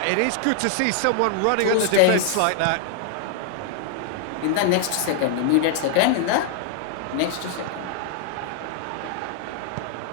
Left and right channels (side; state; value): both; different; correlation -0.01